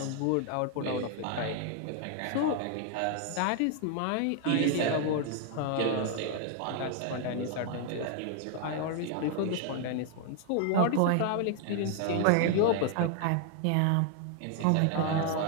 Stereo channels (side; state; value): both; different; correlation 0.00